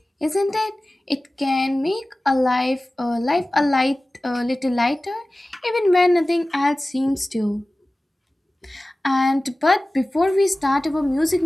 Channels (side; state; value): both; normal; correlation 0.97